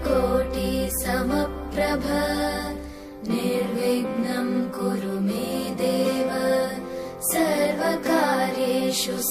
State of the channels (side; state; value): both; identical; correlation 1.00